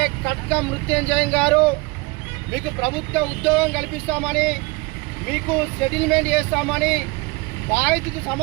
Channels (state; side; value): quieter; left; 25.5 dB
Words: కట్క మృత్యుంజయం గారు మీకు ప్రభుత్వ ఉద్యోగం కల్పిస్తామని, మీకు సెటిల్మెంట్ చేస్తామని, బాధితుకు